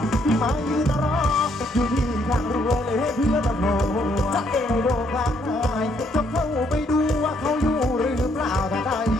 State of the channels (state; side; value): normal; both; correlation 0.70